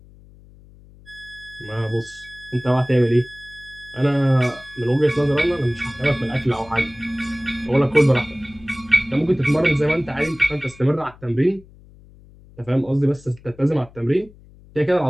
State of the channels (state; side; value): noise; left; hum, 24 dB below the sound